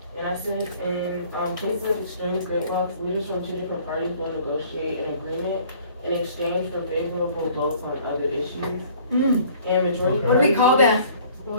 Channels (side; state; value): both; inverted; correlation -0.53